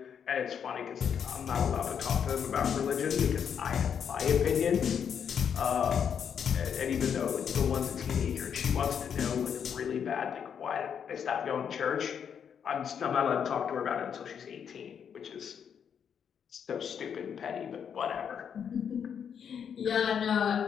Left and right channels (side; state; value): right; quieter; 7.7 dB